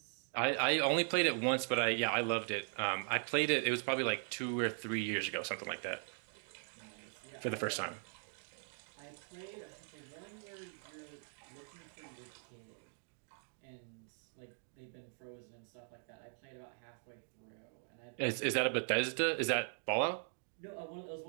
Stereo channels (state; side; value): silent; left; 51 dB below the other